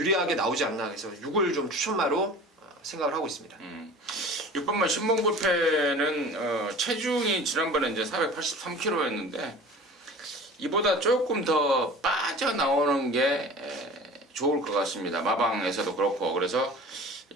나오지 않나, 그래서 6을 좀 추천마로 생각을 하고 있습니다. 6번만 신봉불패는 체중이 지난번에 이제 483kg였는데 이보다 조금 더 빠져나오는 게 좋을 것 같습니다. 마방에서도 그렇고, 그래서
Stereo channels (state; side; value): normal; both; correlation 0.40